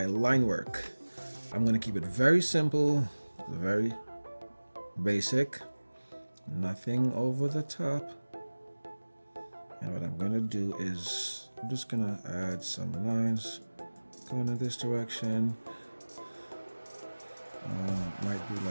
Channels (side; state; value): both; inverted; correlation -1.00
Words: line work, I'm going to keep it very simple, very basic, nothing over the top. And what I'm going to do is I'm just going to add some lines going in this direction. Might do